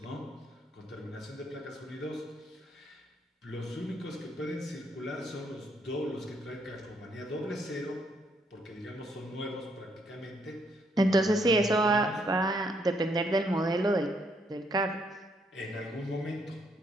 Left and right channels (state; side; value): normal; both; correlation 0.72